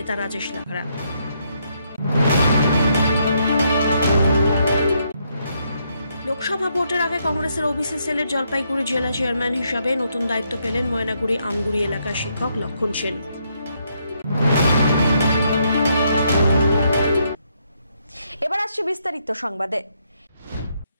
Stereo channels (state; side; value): inverted; both; correlation -0.75